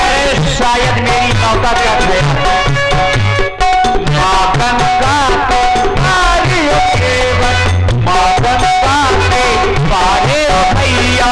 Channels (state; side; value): identical; both; correlation 1.00